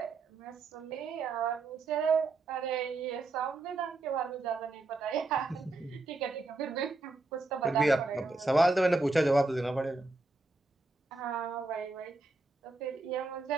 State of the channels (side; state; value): left; quieter; 3.3 dB